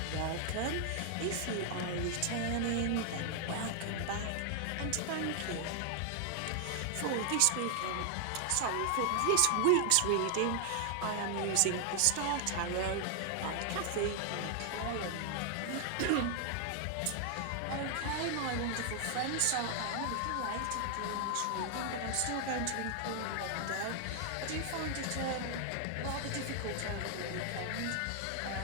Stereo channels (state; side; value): different; both; correlation 0.00